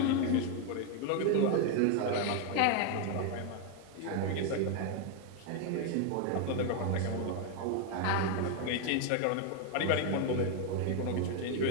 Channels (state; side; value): different; both; correlation 0.01